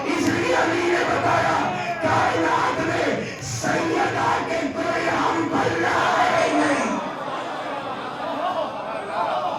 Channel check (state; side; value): identical; both; correlation 1.00